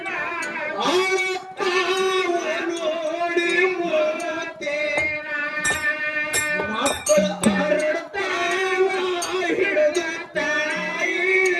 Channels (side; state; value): both; identical; correlation 1.00